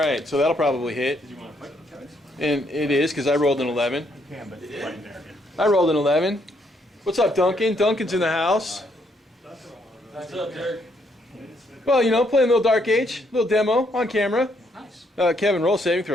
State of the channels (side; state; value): both; normal; correlation 0.72